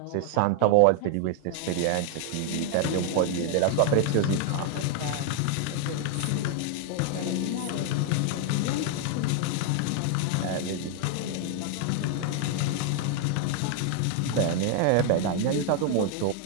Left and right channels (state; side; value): different; both; correlation 0.00